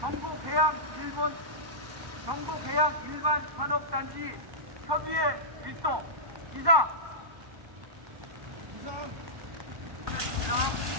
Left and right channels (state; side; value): late; left; 1.1 ms